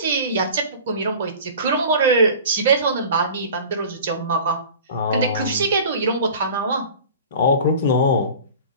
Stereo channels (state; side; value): inverted; both; correlation -0.41